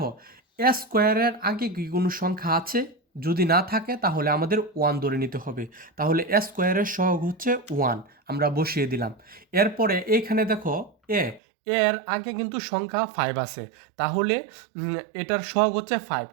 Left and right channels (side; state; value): left; drops out; at 11.4 s